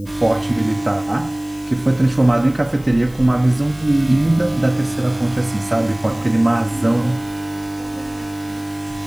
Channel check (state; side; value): noise; left; hiss, 26 dB below the sound